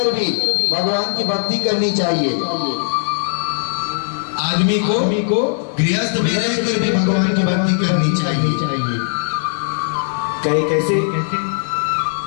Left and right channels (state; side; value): silent; right; digital silence